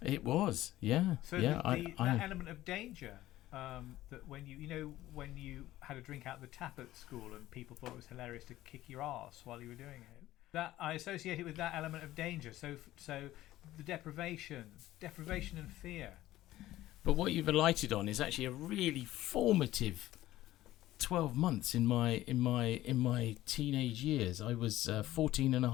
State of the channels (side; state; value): right; quieter; 15.3 dB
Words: It was, yeah. So yeah, that element of danger, that when when you had a drink out of the tap at school and people thought it was hilarious to kick your arse while you were doing it, that I associate it with that element of danger. So the deprivation and fear. But what you've alighted on is actually a really formative 12 months in my teenage years. I was 14 and a